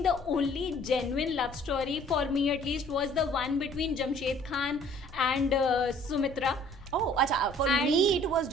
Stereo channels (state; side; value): normal; both; correlation 0.56